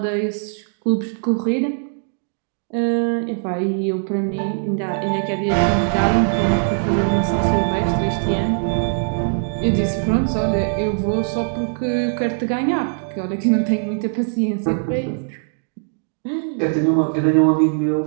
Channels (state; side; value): silent; left; digital silence